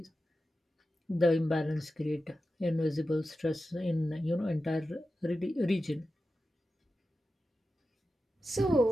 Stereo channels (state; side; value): normal; both; correlation 0.92